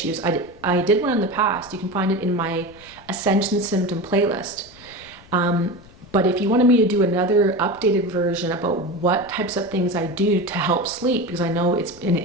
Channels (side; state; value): left; noise; rumble, 24 dB below the sound